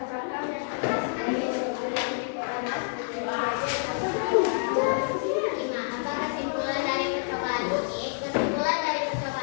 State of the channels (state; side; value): silent; right; digital silence